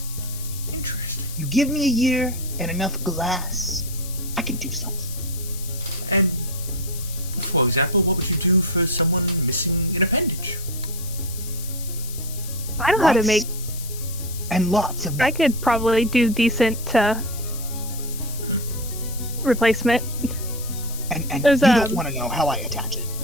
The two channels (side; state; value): left; noise; hiss, 12 dB below the sound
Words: Interesting. You give me a year and enough glass, I can do something. And, for example, what would you do for someone missing an appendage? I know how to Lots make. and lots of I them. could probably do decent replacement. And there's, you don't want to know how I attach it.